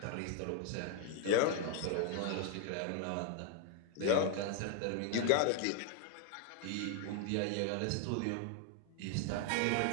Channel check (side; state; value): both; different; correlation 0.01